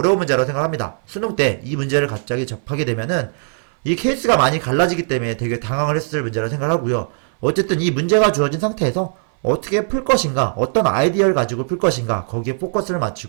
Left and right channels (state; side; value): silent; left; 63 dB below the other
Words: 문제라고 생각합니다. 수능 때 이 문제를 갑자기 접하게 되면은 이 케이스가 많이 갈라지기 때문에 되게 당황을 했을 문제라 생각하고요. 어쨌든 이 문제가 주어진 상태에서 어떻게 풀 것인가, 어떤 아이디어를 가지고 풀 것인가, 거기에 포커스를